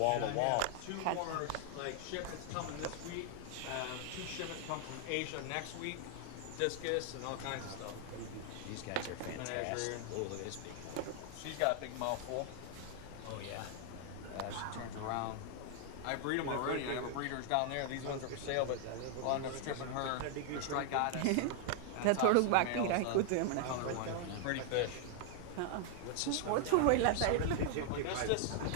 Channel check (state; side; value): different; both; correlation 0.00